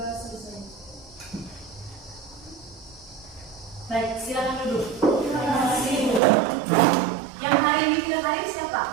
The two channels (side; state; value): left; drops out; at 6.2 s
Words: selesai. Baik, silakan duduk. Terima kasih Ibu. Yang hari ini tidak hadir siapa?